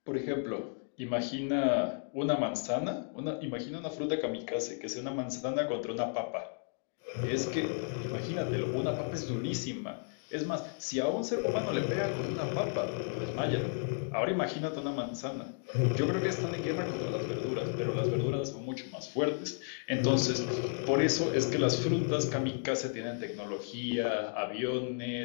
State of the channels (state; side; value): silent; right; 55 dB below the other